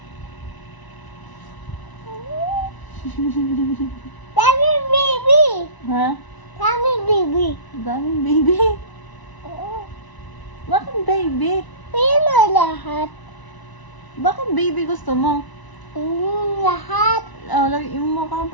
Dami baby! Ha? Dami baby! Daming baby. Oo. Bakit baby? Yun na lahat. Bakit baby gusto mo? Lahat. Oh, lagyan mo ka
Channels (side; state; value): right; late; 1.0 ms